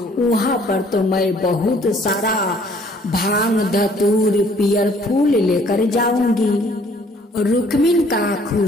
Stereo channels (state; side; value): normal; both; correlation 0.59